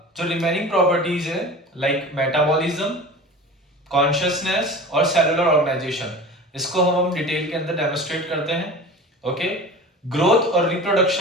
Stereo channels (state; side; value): normal; both; correlation 0.36